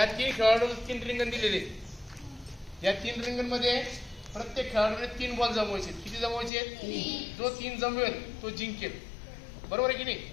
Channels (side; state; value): right; drops out; at 6.5 s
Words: 3 खेळाडू 3 रिंगण दिलेले. या 3 रिंगण मध्ये प्रत्येक खेळाडूने 3 बॉल जमवायचे. किती जमवायचे? 3. जो 3 जमवेल तो जिंकेल. बरोबर आहे की नाही?